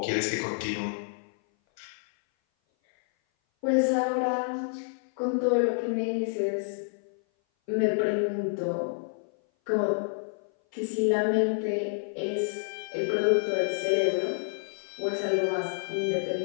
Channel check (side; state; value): right; silent; 57 dB below the other